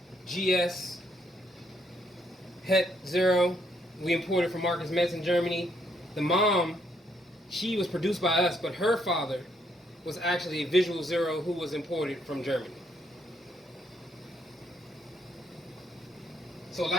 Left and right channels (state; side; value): normal; both; correlation 0.73